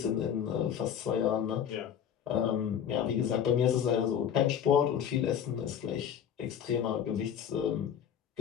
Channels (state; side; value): quieter; right; 8.8 dB